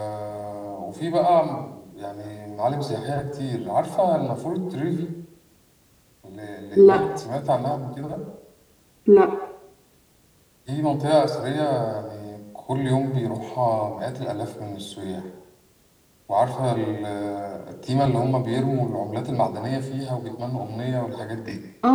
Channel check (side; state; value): both; identical; correlation 1.00